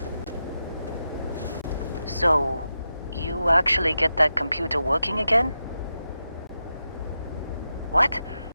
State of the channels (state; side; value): inverted; both; correlation -0.89